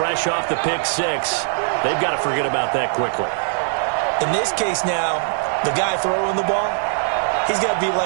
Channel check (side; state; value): left; silent; digital silence